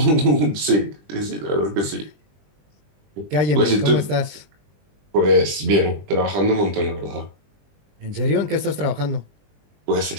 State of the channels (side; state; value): left; late; 20 ms